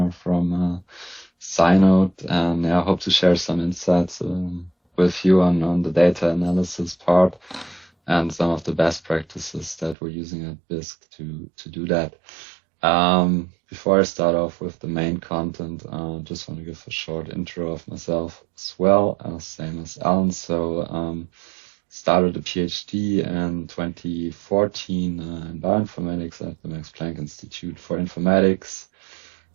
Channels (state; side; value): drops out; left; at 10.0 s